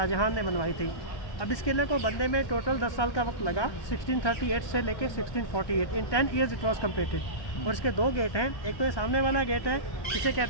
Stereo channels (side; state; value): right; late; 1.2 ms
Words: ने बनवाई थी। अब इस किले को बनने में टोटल 10 साल का वक्त लगा, 1638 से लेकर 1648। इन 10 ईयर्स इट वॉज कम्प्लीटेड। और इसके 2 गेट हैं। एक तो ये सामने वाला गेट है, इसे